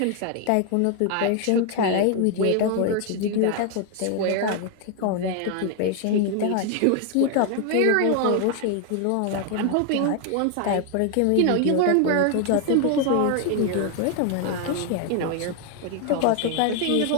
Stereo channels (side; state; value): both; different; correlation 0.01